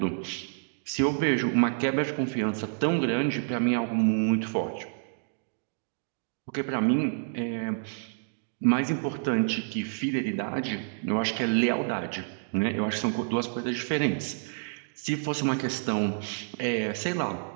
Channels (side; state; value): left; silent; digital silence